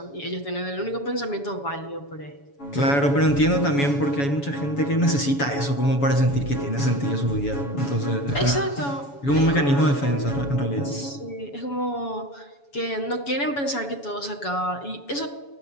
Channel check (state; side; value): late; right; 7.1 ms